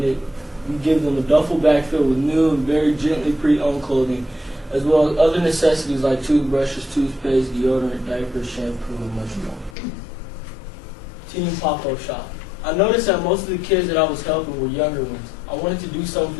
give them a duffel bag filled with new and very gently pre-owned clothing, as well as other necessities like toothbrushes, toothpaste, deodorant, diapers, shampoo, and much more. Team Pop-Up Shop. I noticed that most of the kids that I was helping were younger ones. I wanted to do something for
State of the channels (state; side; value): drops out; right; at 9.8 s